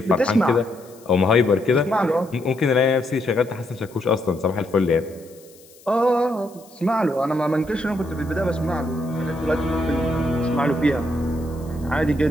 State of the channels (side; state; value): left; noise; hiss, 25 dB below the sound